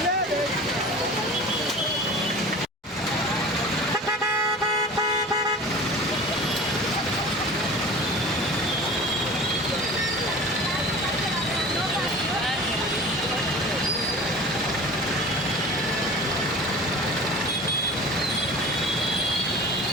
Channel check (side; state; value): both; normal; correlation 0.38